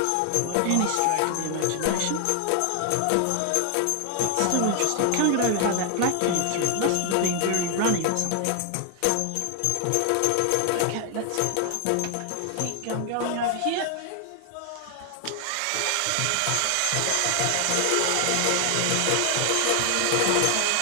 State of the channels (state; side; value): different; both; correlation 0.00